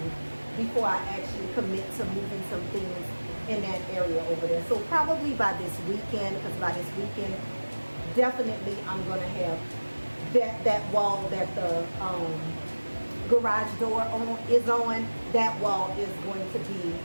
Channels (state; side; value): inverted; both; correlation -1.00